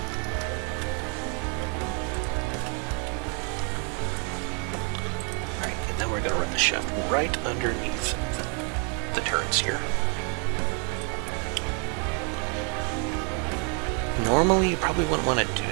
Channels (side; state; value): left; quieter; 38.6 dB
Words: Alright, and then we're going to run the shaft right underneath the turrets here. Normally, you probably wouldn't want to do